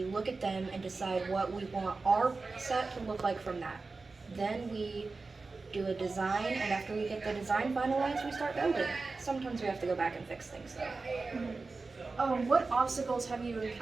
look at them and decide what we want our set to look like from that. Then we do a design, and after we get the design finalized, we start building. Sometimes we have to go back and fix things though. What obstacles have you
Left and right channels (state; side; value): quieter; left; 3.9 dB